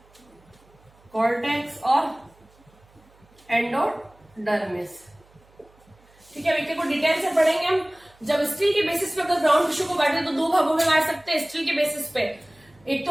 कॉर्टेक्स और एंडोडर्मिस, ठीक है। देखिए को डिटेल से पढ़ेंगे हम। जब स्टील के बेसिस पे अगर ग्राउंड टिश्यू को बांटे तो दो भागों में बांट सकते हैं स्टील के बेसिस पे। एक तो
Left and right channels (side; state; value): right; noise; hum, 30 dB below the sound